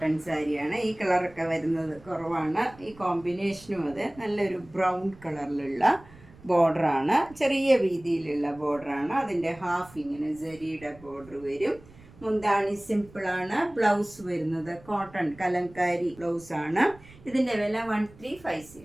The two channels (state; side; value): noise; right; rumble, 23 dB below the sound